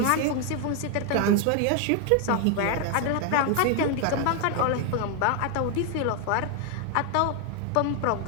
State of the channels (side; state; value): both; different; correlation 0.01